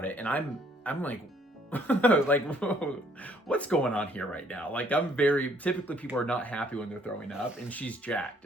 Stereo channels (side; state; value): both; normal; correlation 0.64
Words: it, and I'm like like, whoa, what's going on here right now? Like, typically people are not happy when they're throwing up, and she's jacked.